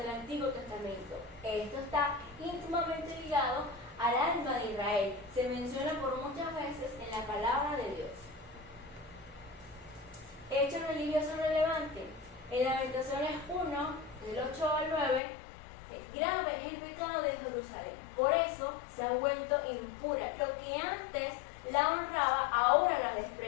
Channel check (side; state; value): right; drops out; at 15.2 s